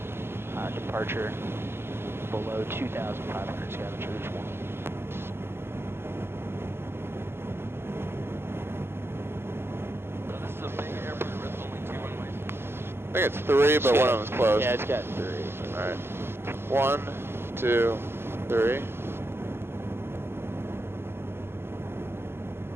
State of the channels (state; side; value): late; left; 0.11 ms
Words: departure below 2,500 Scavengers 1. So this is a big airport with only 2 runways. I think it's 3, but one of them's closed. Yeah, it's got 3. Alright. 1, 2, 3.